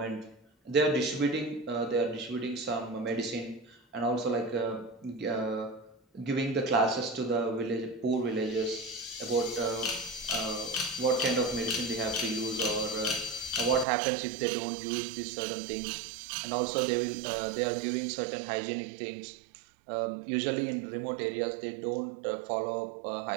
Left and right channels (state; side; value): drops out; left; at 13.9 s